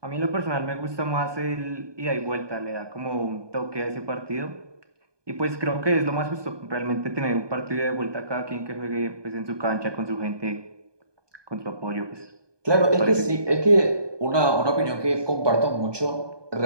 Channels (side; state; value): left; late; 1.2 ms